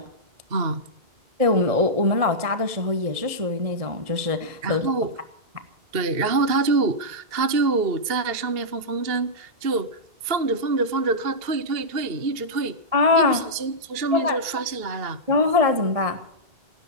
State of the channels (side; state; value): left; late; 2.7 ms